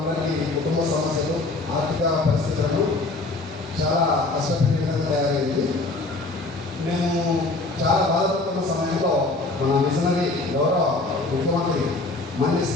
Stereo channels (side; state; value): right; quieter; 3.2 dB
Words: కుటుంబ సమస్యలు, ఆర్థిక పరిస్థితులను చాలా కష్టపెట్టే విధంగా తయారైంది. మేము చాలా బాధపడుతున్న సమయంలో మన మిషనరీ గౌరవ ముఖ్యమంత్రి మాన్య